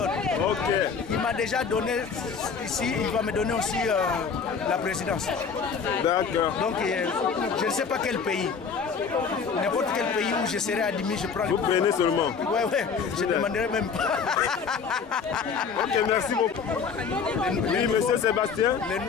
Ok. Il m'a déjà donné ici, il va me donner aussi la présidence. D'accord. Donc, je ne sais pas quel pays. N'importe quel pays où je serai admis, je prends le pouvoir. Vous prenez seulement. Ouais, ouais, je ne demanderai même pas. Ok, merci beaucoup. Oui, monsieur Sébastien.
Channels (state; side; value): quieter; right; 5.9 dB